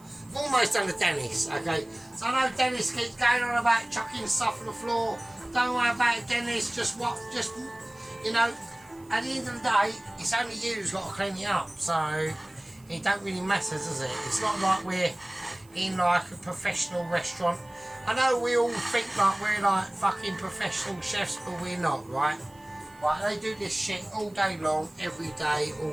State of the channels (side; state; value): right; noise; hiss, 28 dB below the sound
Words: almost done the Dennis, okay. So I know Dennis keeps going on about chucking stuff on the floor. Don't worry about it, Dennis. Just you know. At the end of the day, it's only you who's got to clean it up, so it don't really matter, does it? It's not like we're in like a professional restaurant. I know we all think like we're like fucking professional chefs, but we're not, right? Right, they do this shit all day long, every day,